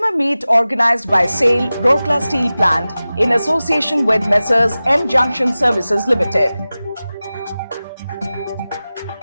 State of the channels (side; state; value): both; inverted; correlation -0.96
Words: meet organized by SAIL Rourkela Steel Plant in association with Messrs M Junction Services Limited.